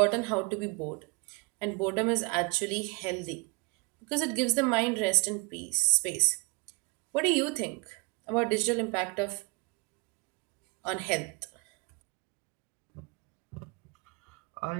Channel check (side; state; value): left; quieter; 29.4 dB